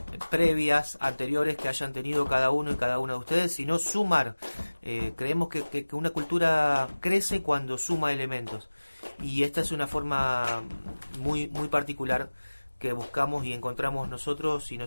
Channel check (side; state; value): both; inverted; correlation -1.00